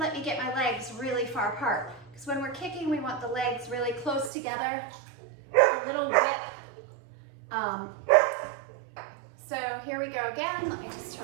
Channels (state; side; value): drops out; left; at 4.3 s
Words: me get my legs really far apart, because when we're kicking, we want the legs really close together, a little whip. So here we go again. Let me just